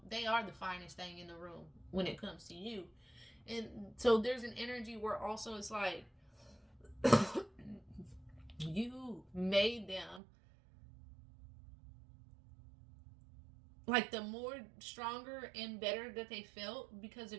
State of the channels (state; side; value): drops out; left; at 10.2 s